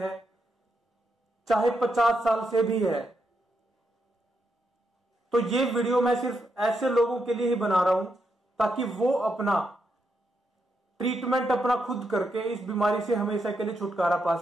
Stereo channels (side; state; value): both; normal; correlation 0.82